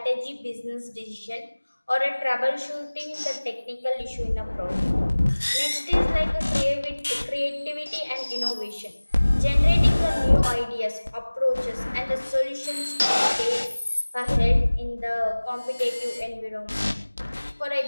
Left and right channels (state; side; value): inverted; both; correlation -1.00